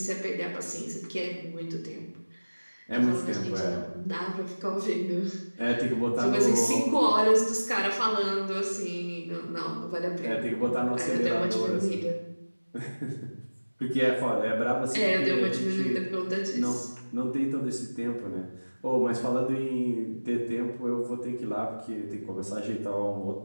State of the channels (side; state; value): both; inverted; correlation -1.00